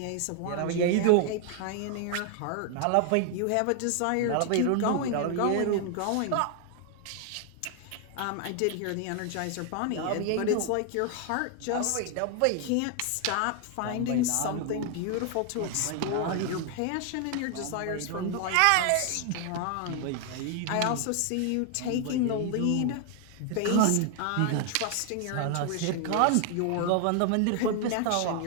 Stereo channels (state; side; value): different; both; correlation 0.00